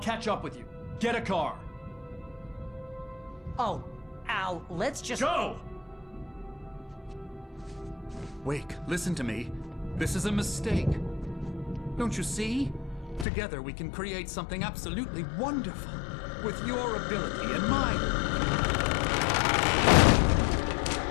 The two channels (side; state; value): right; drops out; at 13.2 s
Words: up with you. Get a car. Oh, Al, let's just... Go! Wake, listen to me. This is a mistake. Don't you see? Together we can create something absolutely wonderful. With your ability and mine.